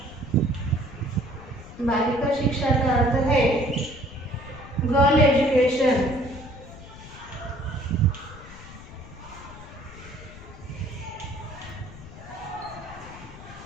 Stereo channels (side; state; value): left; noise; rumble, 16 dB below the sound